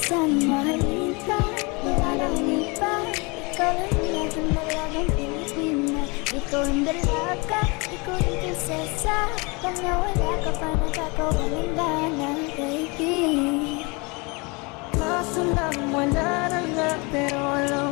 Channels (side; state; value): right; quieter; 28.4 dB